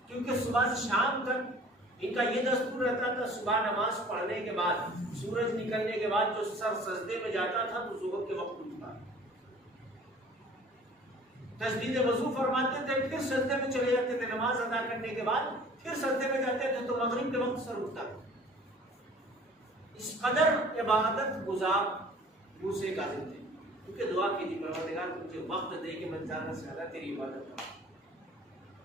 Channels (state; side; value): normal; both; correlation 0.49